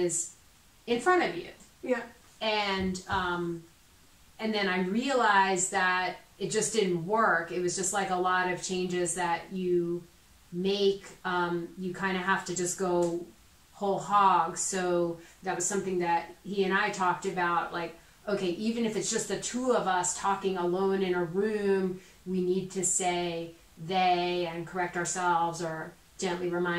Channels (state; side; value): identical; both; correlation 1.00